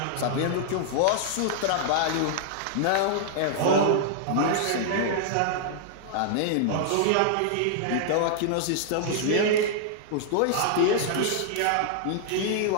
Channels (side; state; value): both; different; correlation -0.01